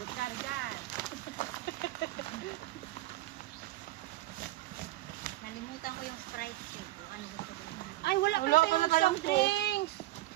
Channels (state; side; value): quieter; left; 17.3 dB